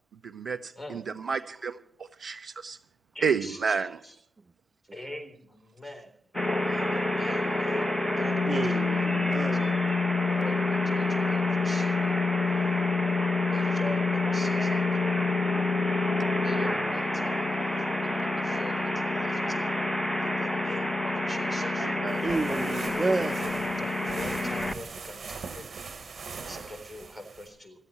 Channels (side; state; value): both; normal; correlation 0.88